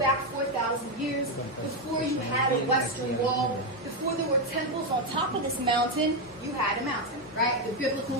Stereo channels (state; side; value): normal; both; correlation 0.06